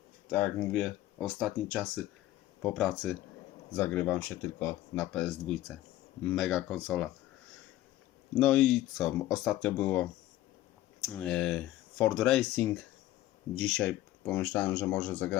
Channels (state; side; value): quieter; right; 15.0 dB